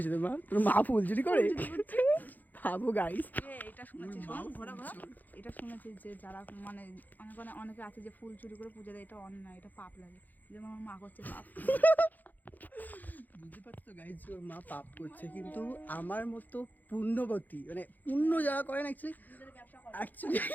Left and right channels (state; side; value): late; right; 0.084 ms